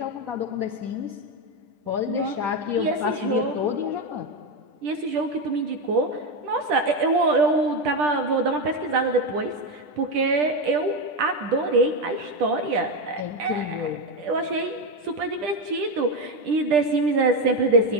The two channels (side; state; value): left; late; 10 ms